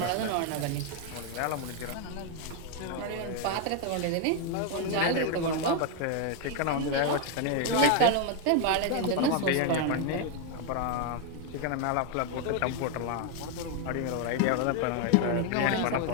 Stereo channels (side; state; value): both; different; correlation 0.01